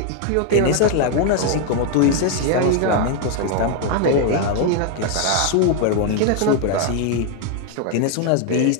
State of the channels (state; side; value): different; both; correlation 0.01